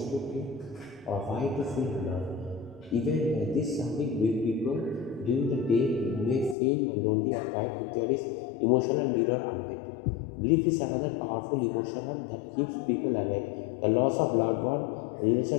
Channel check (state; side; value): drops out; right; at 6.6 s